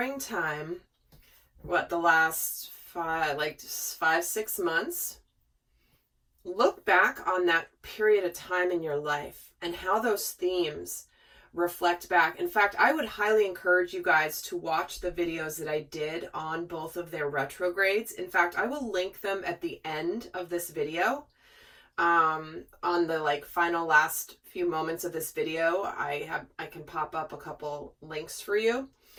the last 5-6 months, look back on that period of time in your life and how those themes reflect back. In fact, I would highly encourage you guys to watch the videos that I did on both of their retrogrades. In fact, I will link them at the end of this video. On the final last few moments of this video, I can pop up a couple links for you.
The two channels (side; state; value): both; identical; correlation 1.00